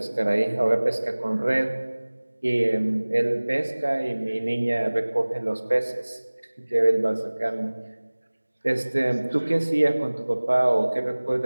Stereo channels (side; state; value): both; inverted; correlation -1.00